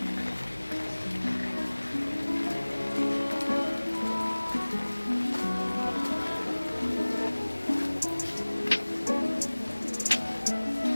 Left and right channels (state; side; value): inverted; both; correlation -1.00